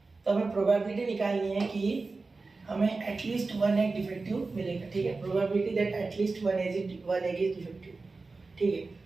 तो हमें प्रोबेबिलिटी निकालनी है कि हमें एटलीस्ट 1 एग डिफेक्टिव मिलेगा। ठीक है, probability that at least 1 egg is defective. ठीक है,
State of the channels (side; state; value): left; quieter; 3.8 dB